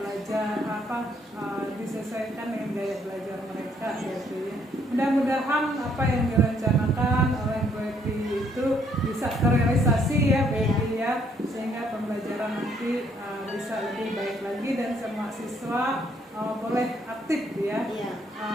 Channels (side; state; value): both; normal; correlation 0.68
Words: disesuaikan dengan gaya belajar mereka gitu ya. Mudah-mudahan apa yang direncanakan oleh Bu Epi itu bisa terrealisasi ya Bu Epi ya, sehingga pembelajaran nanti bisa lebih baik lagi dan semua siswa boleh aktif ya.